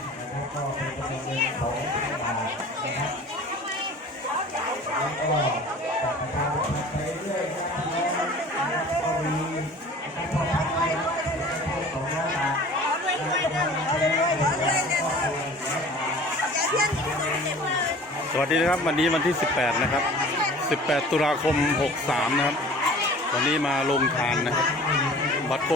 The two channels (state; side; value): normal; both; correlation 0.44